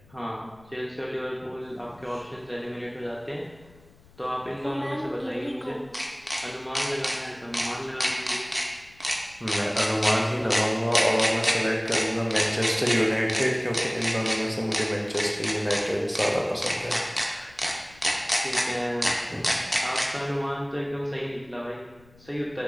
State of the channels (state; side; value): noise; left; rumble, 26 dB below the sound